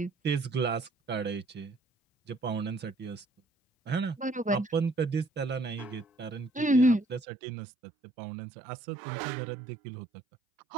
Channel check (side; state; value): left; drops out; at 7.2 s